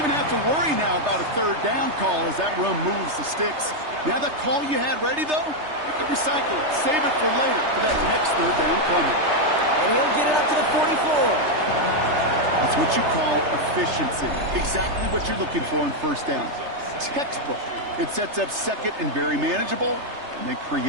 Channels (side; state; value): left; late; 3.3 ms